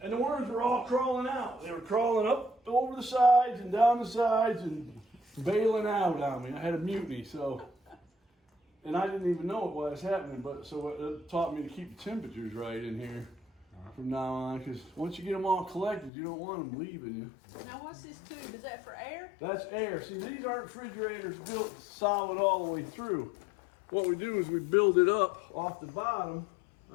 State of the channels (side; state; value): right; drops out; at 16.1 s